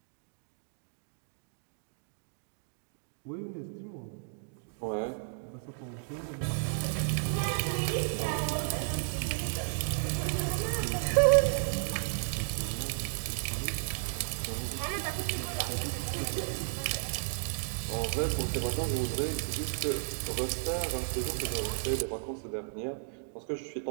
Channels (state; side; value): silent; left; digital silence